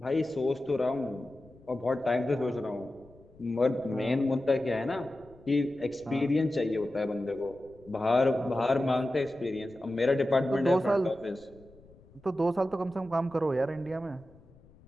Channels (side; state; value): left; noise; rumble, 25 dB below the sound